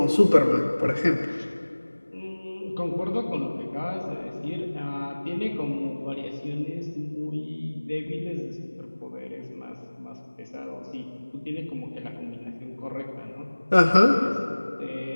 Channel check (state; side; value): inverted; both; correlation -1.00